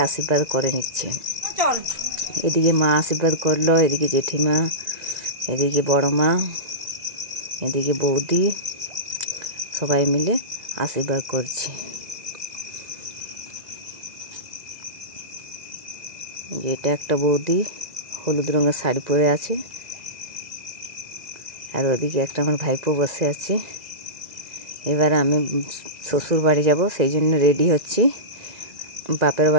আশীর্বাদ করে নিচ্ছে। এদিকে মা আশীর্বাদ করলো, এদিকে জেঠিমা, এদিকে বড় মা, এদিকে বৌদি সবাই মিলে আশীর্বাদ করছে। এটা একটা বৌদি হলুদ রঙের শাড়ি পরে আছে, আর ওদিকে একটা আমার ভাইপো বসে আছে। এবার আমি শ্বশুর বাড়ি যাব, সেই জন্য রেডি হচ্ছি। বাপের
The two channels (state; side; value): late; left; 1.9 ms